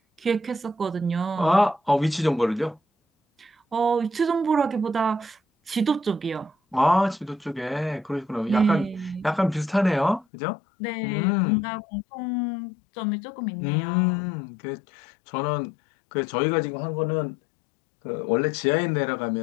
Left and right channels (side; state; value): right; drops out; at 10.2 s